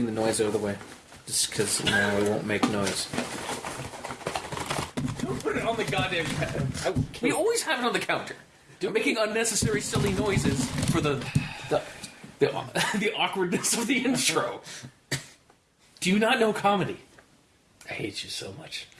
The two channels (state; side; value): identical; both; correlation 1.00